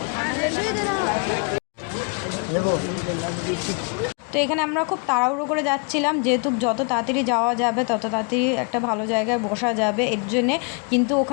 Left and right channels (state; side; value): quieter; right; 34.8 dB